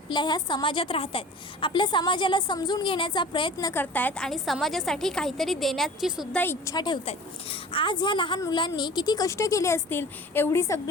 ह्या समाजात राहत आहेत, आपल्या समाजाला समजून घेण्याचा प्रयत्न करत आहेत आणि समाजासाठी काहीतरी देण्याची सुद्धा इच्छा ठेवत आहेत। आज ह्या लहान मुलांनी किती कष्ट केले असतील, एवढी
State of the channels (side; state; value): both; normal; correlation 0.40